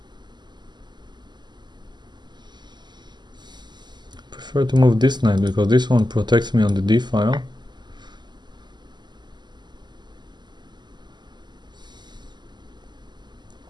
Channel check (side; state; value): left; late; 0.21 ms